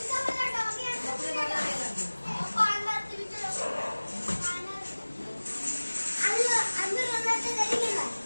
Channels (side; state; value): both; inverted; correlation -1.00